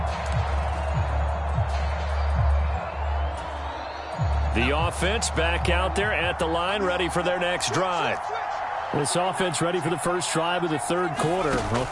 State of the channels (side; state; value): both; identical; correlation 1.00